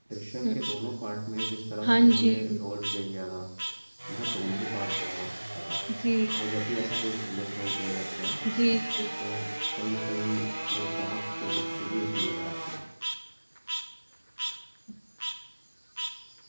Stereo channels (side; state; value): both; inverted; correlation -1.00